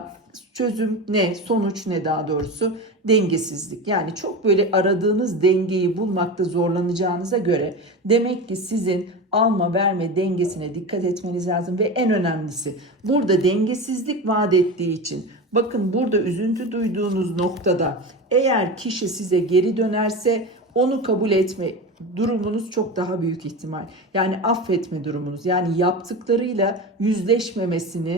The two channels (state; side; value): normal; both; correlation 0.25